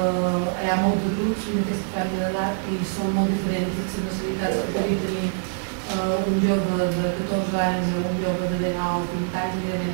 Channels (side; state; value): left; silent; 62 dB below the other